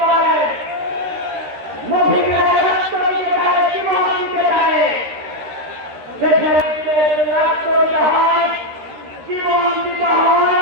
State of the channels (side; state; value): left; late; 13 ms